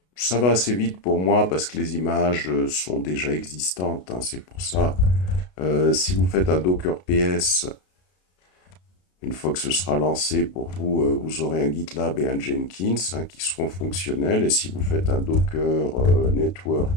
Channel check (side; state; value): right; late; 33 ms